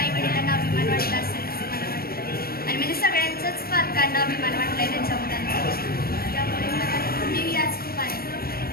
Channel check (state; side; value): late; right; 0.44 ms